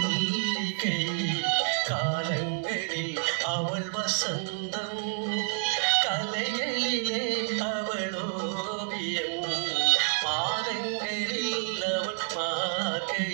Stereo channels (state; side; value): silent; left; digital silence